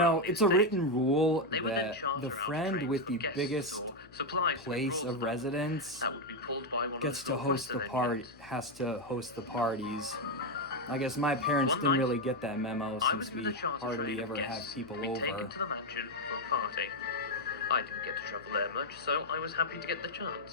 around the it's a estate. written rule They would then that charter the out friend trains with for the guests biggest or supplies to place rural of stores. residence That would be pulled by one gets of to the host the Northwestern party, engines. has to host the parties. I guess my parents One didn't night, really get that memo I was since with we a charter hardly train of ever have guests people to be taken over. to the mansion for a party. I didn't get to travel there much, so I was happy to get the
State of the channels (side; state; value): left; noise; hum, 24 dB below the sound